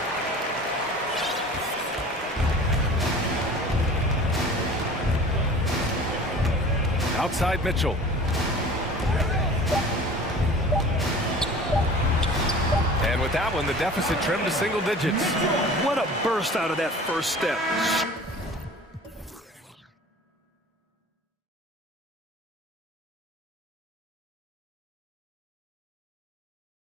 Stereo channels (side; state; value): both; normal; correlation 0.42